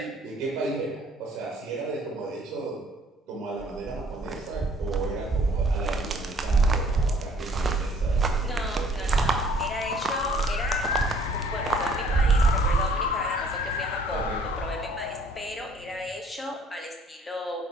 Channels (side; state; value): both; normal; correlation 0.58